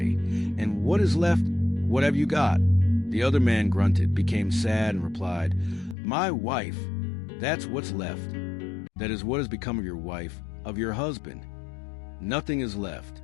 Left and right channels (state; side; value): drops out; right; at 6.0 s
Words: and what is left? What have you got?" The other man grunted, became sad, and replied, "My wife, that's what's left. That is what has become of your wife, of your husband. Nothing is left,